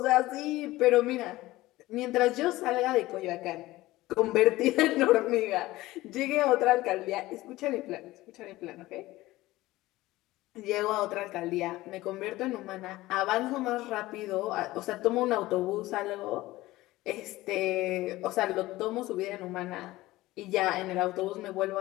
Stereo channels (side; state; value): right; quieter; 17.9 dB